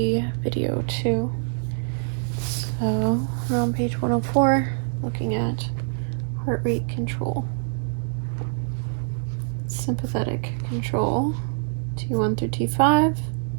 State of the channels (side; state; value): left; silent; digital silence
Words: video 2. So we're on page 104, looking at heart rate control. Sympathetic control, T1 through T5,